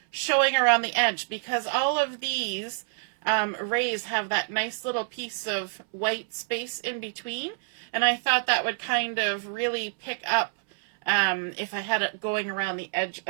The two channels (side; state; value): left; silent; 60 dB below the other